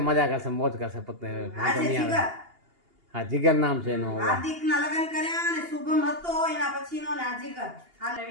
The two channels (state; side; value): late; left; 2.8 ms